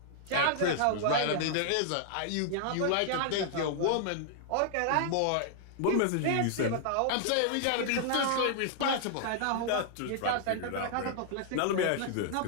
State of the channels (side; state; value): both; different; correlation -0.01